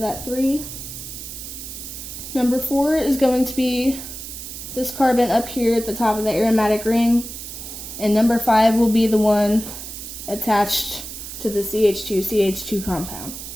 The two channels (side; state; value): right; noise; hiss, 10 dB below the sound